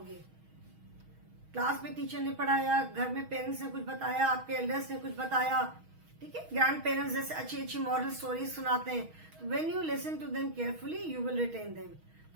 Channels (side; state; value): left; late; 6.3 ms